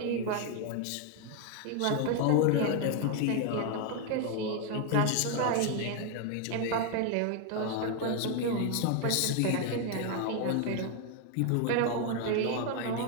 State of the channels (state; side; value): different; both; correlation 0.01